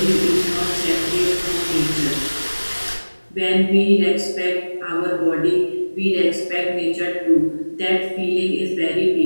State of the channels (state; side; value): inverted; both; correlation -1.00